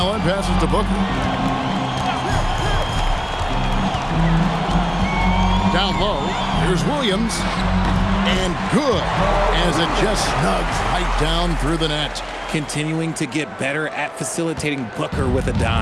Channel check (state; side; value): identical; both; correlation 1.00